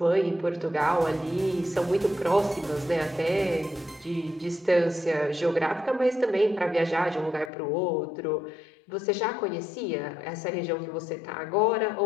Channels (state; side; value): drops out; right; at 7.5 s